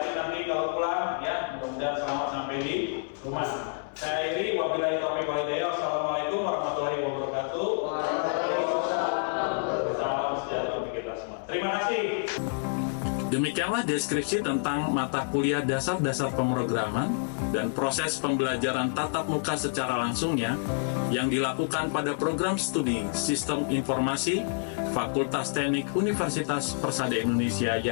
nanti kalau pulang ya. Mudah-mudahan selamat sampai di rumah. Saya Iri, wabillahi taufiq wal hidayah. Wassalamualaikum warahmatullahi wabarakatuh. Salam sejahtera bagi kita semua. Terima kasih. Demikianlah deskripsi tentang mata kuliah dasar-dasar pemrograman dan proses pembelajaran tatap muka secara langsungnya yang dilakukan pada program studi Sistem Informasi Fakultas Teknik Universitas Persada Indonesia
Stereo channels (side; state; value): right; silent; 59 dB below the other